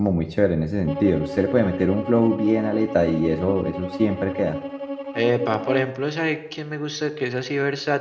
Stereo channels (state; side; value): identical; both; correlation 1.00